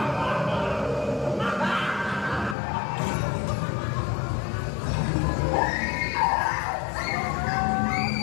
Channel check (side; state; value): right; drops out; at 2.6 s